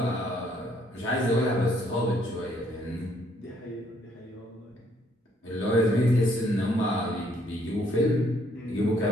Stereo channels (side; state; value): both; normal; correlation 0.67